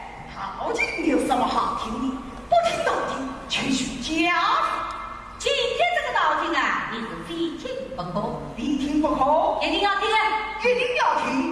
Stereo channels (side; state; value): both; identical; correlation 1.00